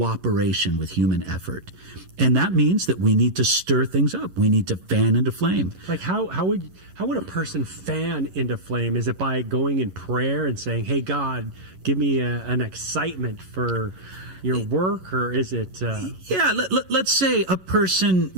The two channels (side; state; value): left; late; 11 ms